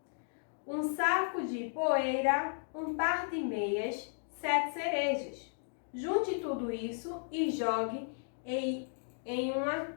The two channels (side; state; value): right; silent; digital silence